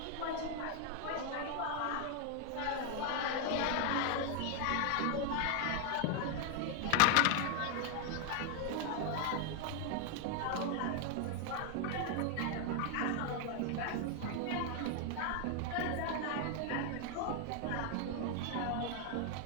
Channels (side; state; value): both; different; correlation 0.00